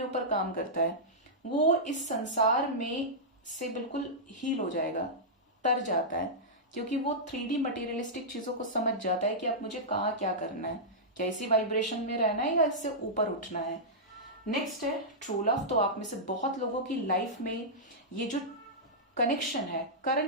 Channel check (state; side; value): normal; both; correlation -0.12